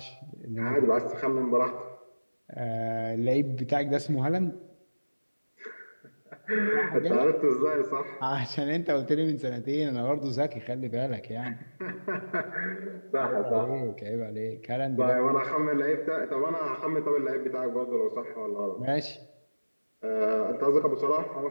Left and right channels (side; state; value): both; inverted; correlation -1.00